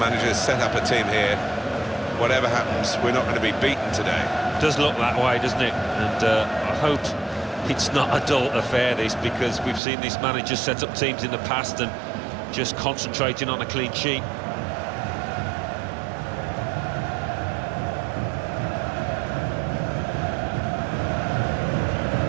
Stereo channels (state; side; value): drops out; left; at 9.8 s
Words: has set up a team here. Whatever happens, we're not going to be beaten today. Does look that way, doesn't it? And I hope it's not a dull affair, this, because we've seen this manager set up teams in the past and just concentrating on a clean sheet.